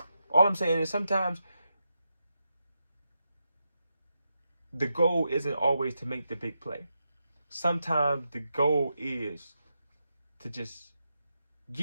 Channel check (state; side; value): inverted; both; correlation -0.86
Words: All I'm saying is sometimes the goal isn't always to make the big play. Sometimes the goal is to just